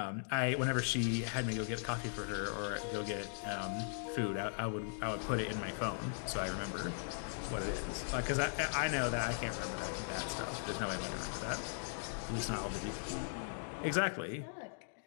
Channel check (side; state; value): right; silent; digital silence